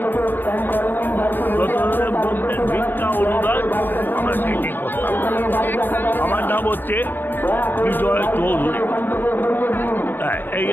যতদিনের মধ্যে ভিক্ষা অনুদান আমরা সেটাই করতাম। আমার নাম হচ্ছে বিজয় চৌধুরী। হ্যাঁ, এই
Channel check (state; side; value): late; right; 0.095 ms